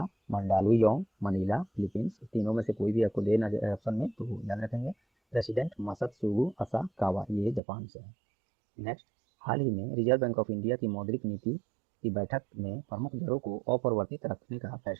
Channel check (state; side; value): drops out; left; at 7.6 s